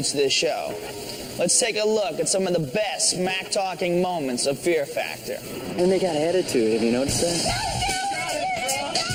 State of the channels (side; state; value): both; identical; correlation 1.00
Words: to this show. Let's take a look at some of the best smack-talking moments of Fear Factor. And they got attitude, have you noticed that?